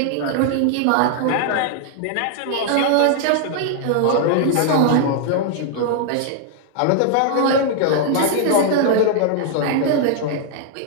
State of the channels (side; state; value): both; different; correlation 0.00